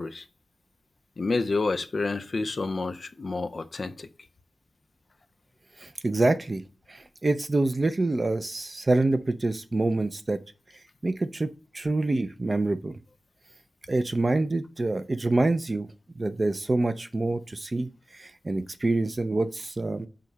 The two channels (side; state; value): both; normal; correlation 0.96